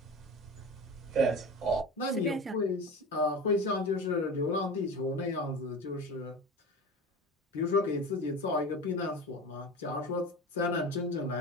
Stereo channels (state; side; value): normal; both; correlation 0.31